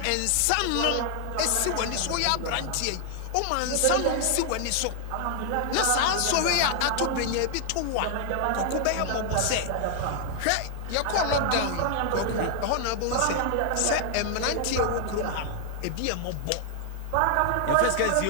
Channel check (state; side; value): different; both; correlation 0.00